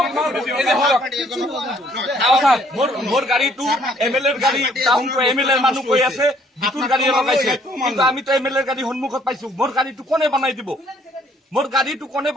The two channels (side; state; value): both; normal; correlation 0.63